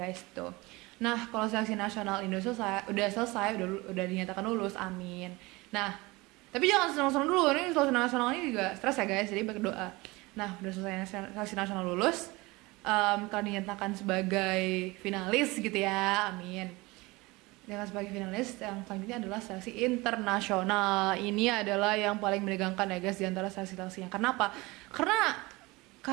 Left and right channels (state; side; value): quieter; left; 22.7 dB